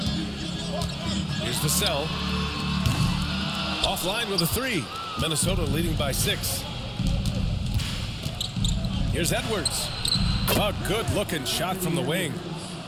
Here's Vassell. Offline with a 3. Minnesota leading by 6. Here's Edwards. A good-looking shot from the wing.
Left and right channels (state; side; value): identical; both; correlation 1.00